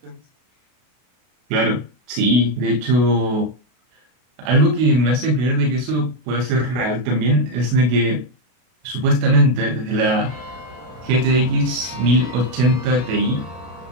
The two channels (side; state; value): left; late; 32 ms